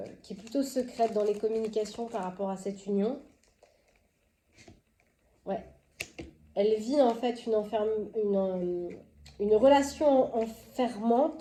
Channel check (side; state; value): both; identical; correlation 1.00